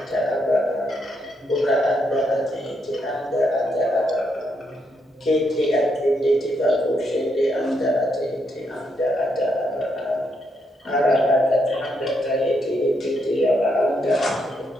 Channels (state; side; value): normal; both; correlation 0.78